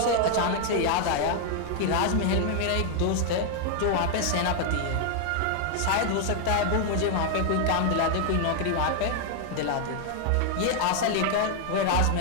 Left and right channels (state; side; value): different; both; correlation 0.00